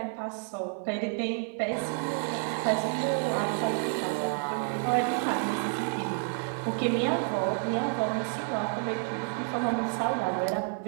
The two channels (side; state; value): left; silent; 58 dB below the other